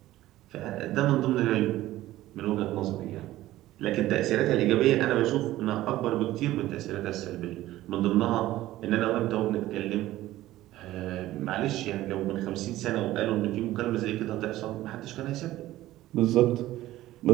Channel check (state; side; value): quieter; left; 15.5 dB